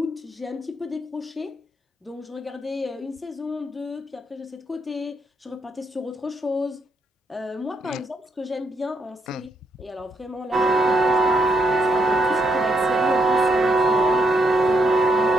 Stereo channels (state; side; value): normal; both; correlation 0.76